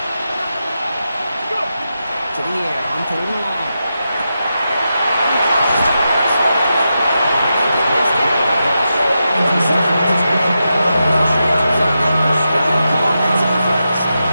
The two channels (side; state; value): both; inverted; correlation -0.88